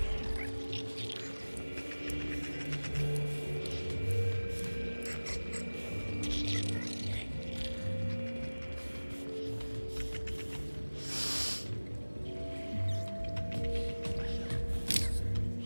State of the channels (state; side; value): inverted; both; correlation -1.00